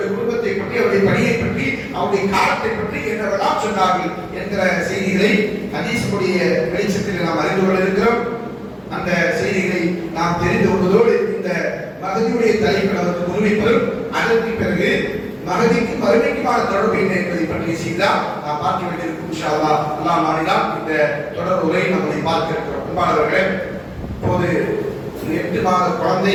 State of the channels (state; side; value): identical; both; correlation 1.00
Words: குடும்பத்தை பற்றி, அவருடைய பணியை பற்றி, அவருடைய காலத்தை பற்றி என்னவெல்லாம் சொன்னார்கள் என்கிற செய்திகளை ஹதீஸுடைய வெளிச்சத்தில் நாம் அறிந்து கொள்ள இருக்கிறோம். அந்த செய்திகளை நாம் தெரிந்து கொள்வதோடு இந்த மகதியுடைய தலைப்பில் அவருக்கு முன்வைப்பதும், அதற்கு பிறகு மகதிக்கு மறுமைக்குமான தொடர்பு என்ன என்பதை பற்றிய செய்திதான் நாம் பார்க்க வேண்டியிருக்கும். இன்ஷா அல்லாஹ் அல்லாஹ் நாடினால் இந்த தொடர் உரை நம்மளை பார்க்க இருக்கிறோம். அன்பானவர்களே, இப்போது 8 மாத